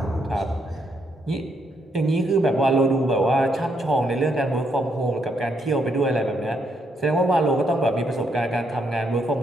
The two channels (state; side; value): normal; both; correlation 0.76